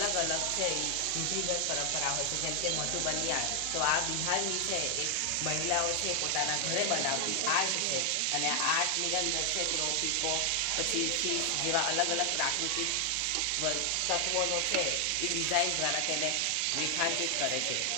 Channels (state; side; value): different; both; correlation 0.00